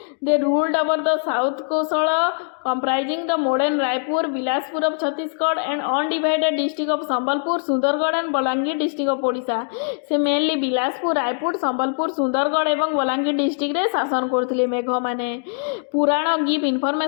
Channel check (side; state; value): right; silent; digital silence